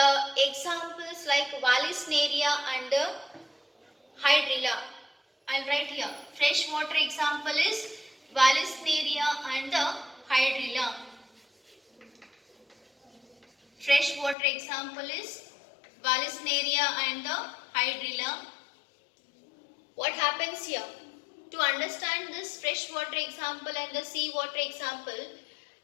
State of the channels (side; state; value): right; drops out; at 14.4 s